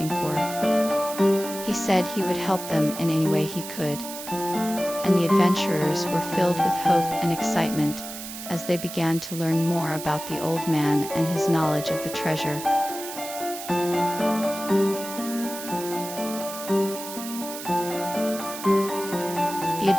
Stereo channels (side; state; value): right; noise; hiss, 10 dB below the sound